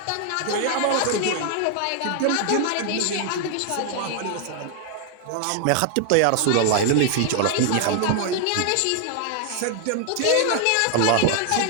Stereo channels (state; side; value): different; both; correlation 0.00